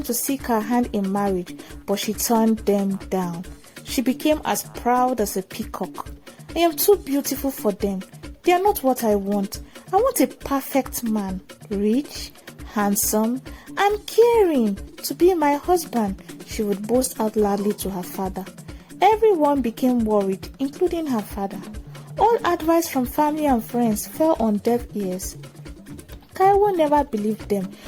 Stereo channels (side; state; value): both; identical; correlation 1.00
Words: to seek her hand in marriage, but she turned them down. She became as proud as a peacock. I am too beautiful for them. They are not what I want. I want a perfect man, rich, handsome, and caring, to be my husband, she would boast out loudly to her father. Everyone became worried, including her father. All advice from family and friends fell on deaf ears. Taiwo never believed them